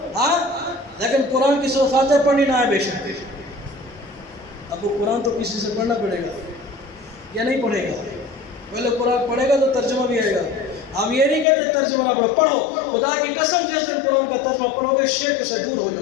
ہاں، لیکن قرآن کی سورۃ فاتحہ پڑھنی نہ ہے بے شک. اب وہ قرآن تو کسی سے پڑھنا پڑے گا یا نہیں پڑھے گا؟ پہلے قرآن پڑھے گا تو ترجمہ بھی آئے گا. ہم یہ نہیں کہتے ترجمہ نہ پڑھو، پڑھو. خدا کی قسم جس دن قرآن کا ترجمہ پڑھو گے شرک سے دور ہو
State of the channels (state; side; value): drops out; right; at 11.5 s